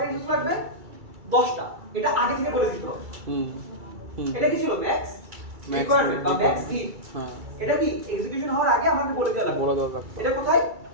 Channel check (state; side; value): late; left; 2.3 ms